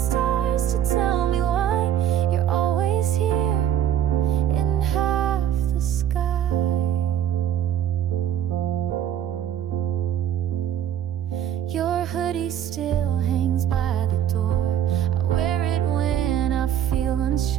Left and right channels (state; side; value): quieter; left; 10.3 dB